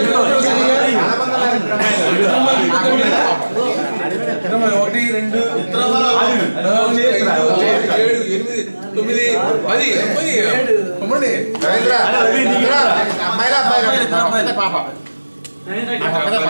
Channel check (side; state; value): both; inverted; correlation -1.00